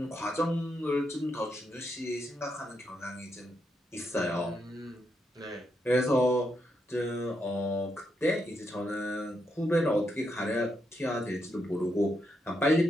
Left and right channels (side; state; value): both; normal; correlation 0.81